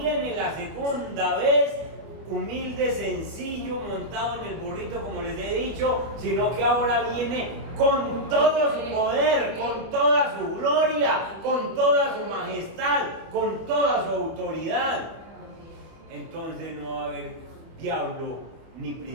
la segunda vez humilde, sencillo, montado en el burrito, como les he dicho, sino que ahora viene con todo su poder, con toda su gloria, con toda su majestad, con toda su autoridad. Entonces no va a haber diablo, ni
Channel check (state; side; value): late; left; 24 ms